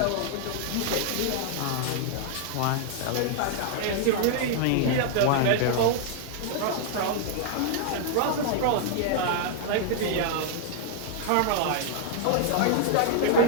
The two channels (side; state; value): both; different; correlation 0.00